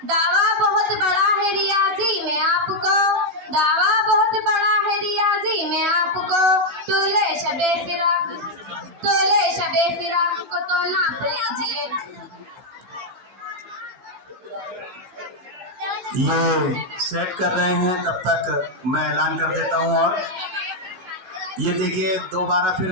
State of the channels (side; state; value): left; late; 15 ms